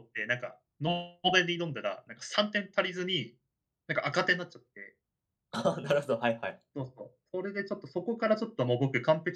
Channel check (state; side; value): identical; both; correlation 1.00